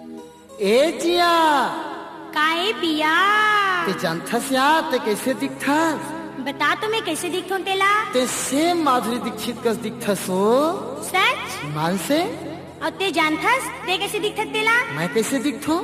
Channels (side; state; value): both; identical; correlation 1.00